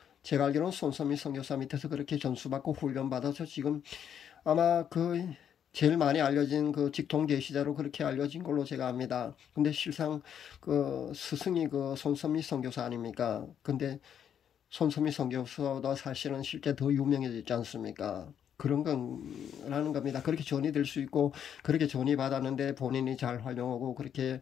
제가 알기로는 손선미 선교사 밑에서 그렇게 전수받고 훈련받아서 지금 아마 제일 많이 알려진 직통 계시자로 그렇게 알려진 걸로 제가 압니다. 근데 실상 스승이 손선미 선교사 아닙니까? 근데 손선미 선교사보다 사실은 실제 더 유명해졌지 않습니까? 그런 거라는 겁니다. 그렇게 전이 될 수 있고 그렇게 전이 받았는데 본인이 잘 활용하고 그렇게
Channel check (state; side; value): quieter; right; 8.9 dB